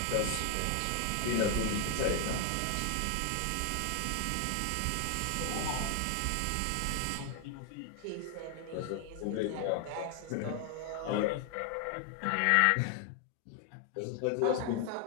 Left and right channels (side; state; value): both; different; correlation 0.00